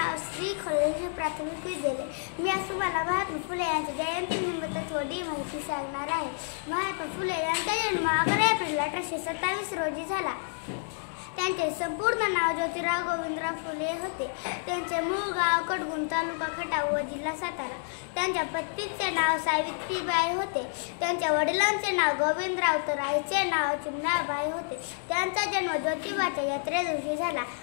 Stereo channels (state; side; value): silent; right; digital silence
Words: श्री खळेश्वर प्राथमिक विद्यालय. मी आज तुम्हाला महात्मा फुले यांच्या जयंतीनिमित्त थोडी माहिती सांगणार आहे. महात्मा फुले यांचा जन्म 11 एप्रिल 1827 रोजी झाला. त्यांचे संपूर्ण नाव ज्योतिराव गोविंदराव फुले होते. त्यांचे मूळ गाव कडगुण, तालुका खटाव व जिल्हा सातारा. त्यांच्या पत्नीचे नाव सावित्रीबाई होते. त्यांच्या वडिलांचे नाव गोविंदराव तर आईचे नाव चिमणाबाई होते. त्यांचा जन्म ज्योतिबाच्या यात्रे दिवशी झाला,